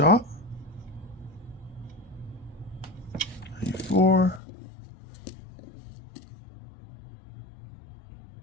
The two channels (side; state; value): right; drops out; at 4.4 s